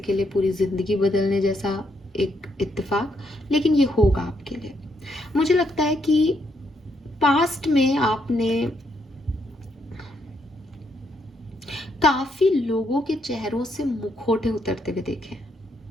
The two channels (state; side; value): normal; both; correlation 0.76